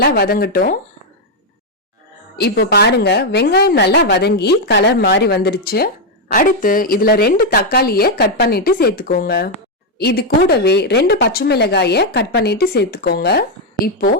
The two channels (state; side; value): normal; both; correlation 0.01